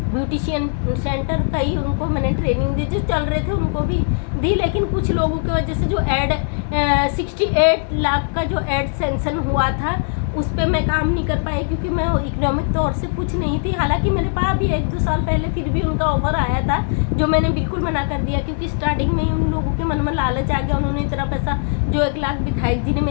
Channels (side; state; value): right; silent; 66 dB below the other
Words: ब्यूटिशियन सेंटर, कई उनको मैंने ट्रेनिंग दी, जो चल रहे थे उनको भी दी। लेकिन कुछ लोगों की वजह से जो 68 लाख का जो एड सेंक्शन हुआ था, उस पर मैं काम नहीं कर पाई, क्योंकि मैं इकोनॉमिक तौर से कुछ नहीं थी। हालांकि मेरे पास भी 1-2 साल पहले फिर भी उनका ऑफर आया था, जो मैंने बिल्कुल मना कर दिया, क्योंकि स्टार्टिंग में ही उन लोगों के मन में लालच आ गया। उन्होंने इतना पैसा, जो 1 लाख विधायक जी ने